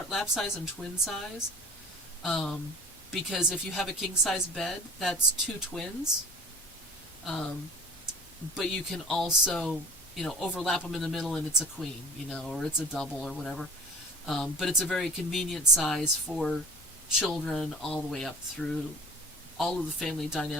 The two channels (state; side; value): normal; both; correlation 0.42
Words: lap size and twin size, because if you have a king size bed, that's 2 twins, but you can also overlap them in the middle and it's a queen, or it's a double or whatever. But it's a very convenient size for children all the way up through all of the family